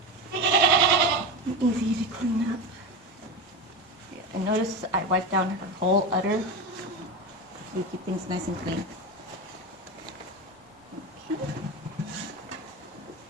and easy to clean up. And notice I wiped down her whole udder so we keep things nice and clean. Okay.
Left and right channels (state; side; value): normal; both; correlation 0.20